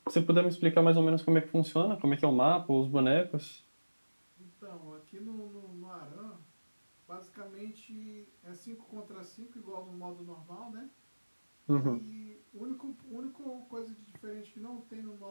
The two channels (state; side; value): inverted; both; correlation -1.00